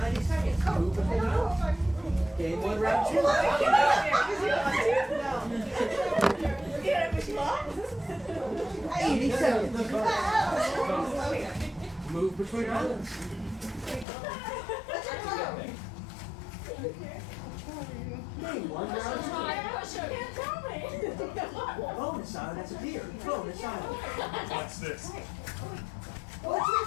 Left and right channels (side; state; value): right; drops out; at 14.1 s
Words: seconds. Move between islands. Game 1, round 2. 80 seconds. Move between islands. Game 1, round 2. Bonus island has appeared. Bonus island. What's this?